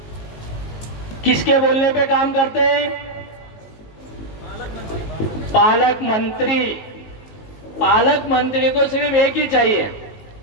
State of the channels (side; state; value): right; late; 19 ms